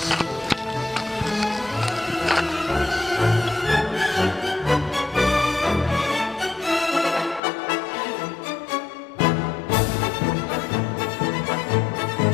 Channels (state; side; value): drops out; right; at 7.4 s